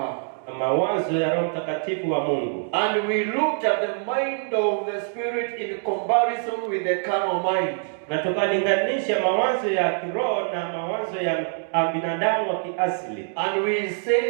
Mawazo ya Roho Mtakatifu wa Mungu. And we looked at the mind of the Spirit in comparison with the carnal mind. Na tukalinganisha mawazo ya kiroho na mawazo ya binadamu wa kiasili. And we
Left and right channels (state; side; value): silent; left; 62 dB below the other